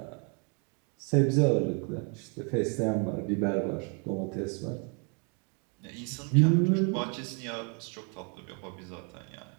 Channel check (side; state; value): left; quieter; 36.6 dB